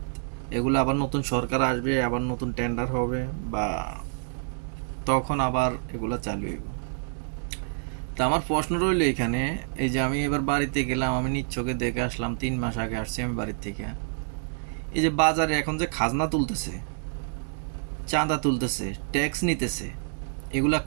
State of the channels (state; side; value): silent; left; digital silence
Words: এগুলো আবার নতুন সরকার আসবে, আবার নতুন টেন্ডার হবে, বা তখন আবার এগুলো চালু হইব। তা আমার প্রশ্ন রইল এখানে, এই যে আমি এবার বাড়িতে গেলাম, আমি নিজ চোখে দেখে আসলাম, 3 মাস আগে আসছি আমি বাড়ির থেকে। এই যে বাজারে এখন যে খাজনা তুলতেছে, চাঁদা তুলতেছে, ট্যাক্স নিতেছে, এগুলা